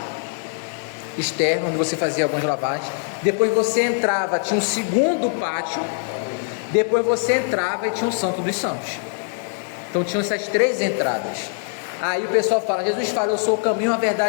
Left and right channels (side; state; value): right; silent; 57 dB below the other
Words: externo, onde você fazia algumas lavagens. Depois você entrava, tinha um segundo pátio. Depois você entrava e tinha o Santo dos Santos. Então tinham essas 3 entradas. Aí o pessoal fala, Jesus fala, eu sou o caminho, a